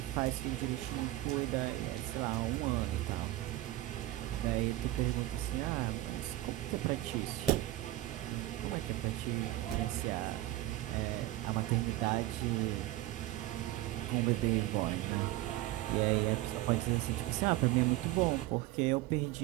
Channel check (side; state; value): left; quieter; 16.5 dB